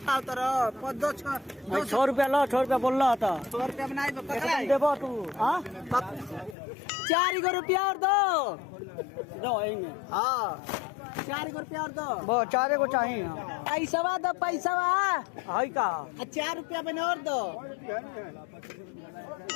खाओ तर 6 रुपया लो, 6 रुपया बोल रहा था। 100 रुपया बनाई पकड़ा देबो तू। हाँ 4 रुपया और दो। दो में। हाँ 4 रुपया और दो। वो 4 को चाहिए। पैसा दो पैसा है का 4 रुपया बने और दो।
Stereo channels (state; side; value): drops out; right; at 6.6 s